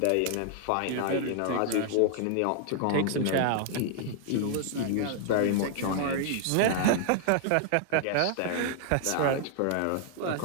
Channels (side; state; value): both; different; correlation -0.01